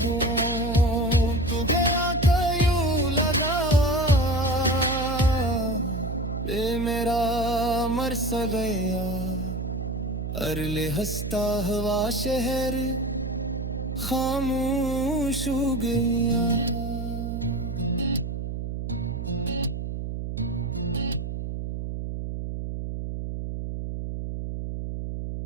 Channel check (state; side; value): noise; right; hum, 4 dB below the sound